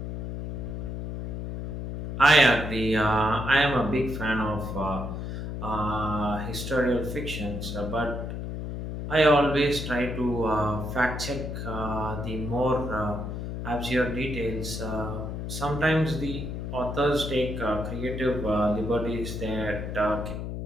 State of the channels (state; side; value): noise; left; hum, 5 dB below the sound